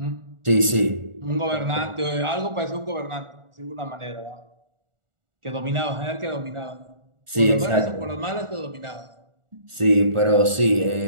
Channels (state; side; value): late; left; 1.4 ms